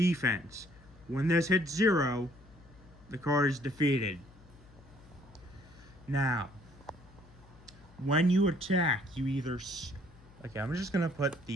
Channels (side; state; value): left; noise; hum, 24 dB below the sound